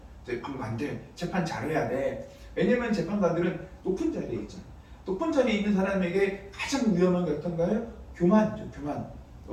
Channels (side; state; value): both; identical; correlation 1.00